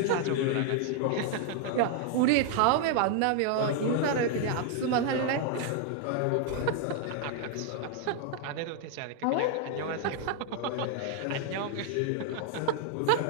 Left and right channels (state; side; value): different; both; correlation 0.00